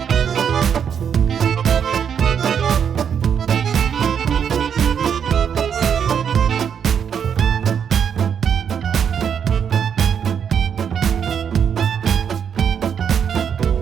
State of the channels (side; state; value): left; quieter; 7.8 dB